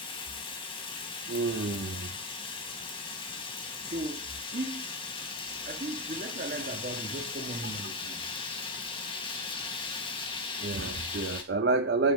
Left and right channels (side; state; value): both; normal; correlation 0.02